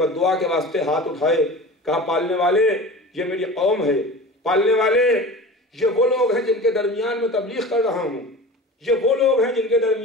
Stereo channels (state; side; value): normal; both; correlation 0.35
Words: دعا کے واسطے ہاتھ اٹھائے، کہا پالنے والے یہ میری قوم ہے، پالنے والے یہ وہ لوگ ہیں جن کے درمیان میں تبلیغ کر رہا ہوں، یہ وہ لوگ ہیں جن کے